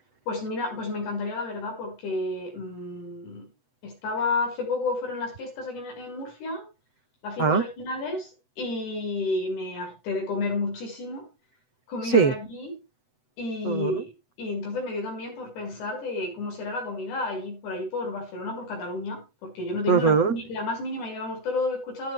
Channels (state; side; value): late; right; 7.9 ms